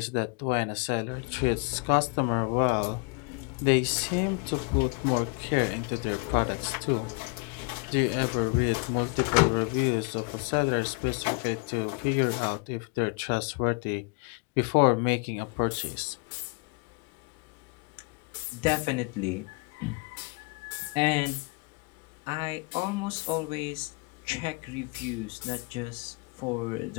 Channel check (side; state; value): right; quieter; 30.9 dB